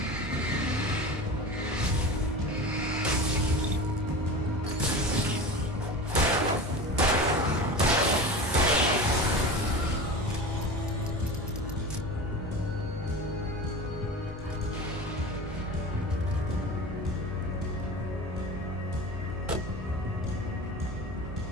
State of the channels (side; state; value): both; normal; correlation 0.31